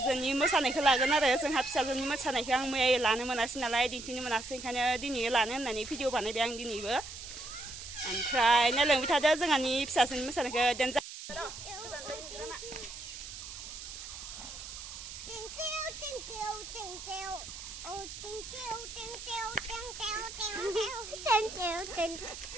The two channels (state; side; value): noise; right; hiss, 11 dB below the sound